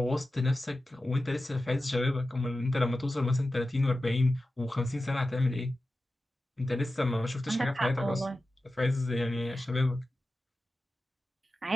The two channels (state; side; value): normal; both; correlation 0.93